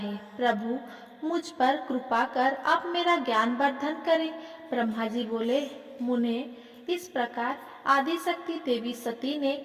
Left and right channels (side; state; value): both; identical; correlation 1.00